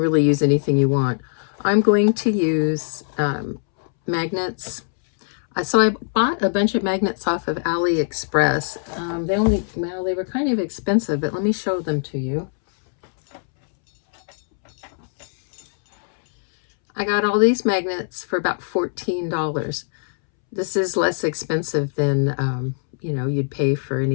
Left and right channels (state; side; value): silent; right; 65 dB below the other